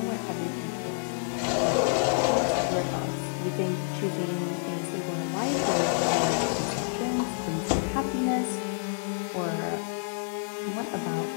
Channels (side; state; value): right; silent; 59 dB below the other